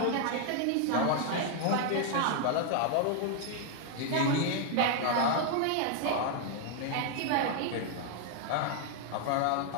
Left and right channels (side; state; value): both; different; correlation 0.00